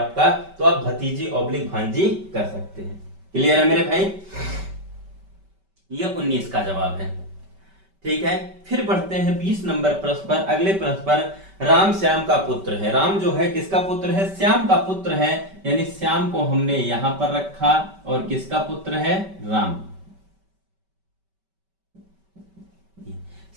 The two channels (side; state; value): left; late; 5.2 ms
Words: तो आप भतीजी ऑब्लिक भांजी कर सकते हैं। क्लियर है मेरे भाई, यह 19 का जवाब है। ठीक है, फिर बढ़ते हैं 20 नंबर प्रश्न पर। अगले प्रश्न पर राम श्याम का पुत्र है। राम जो है किसका पुत्र है, श्याम का पुत्र है, यानी श्याम को हमने यहां पर रखा, और किसका पुत्र है, राम।